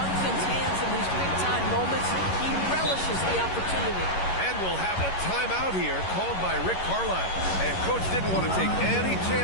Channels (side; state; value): right; late; 11 ms